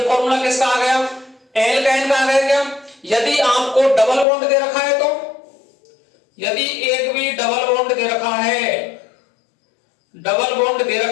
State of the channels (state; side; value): drops out; right; at 4.2 s